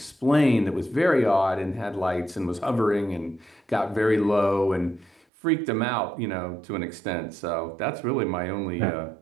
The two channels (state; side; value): drops out; left; at 5.2 s